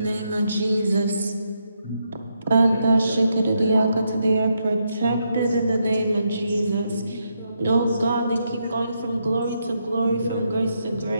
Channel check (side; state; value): both; inverted; correlation -0.80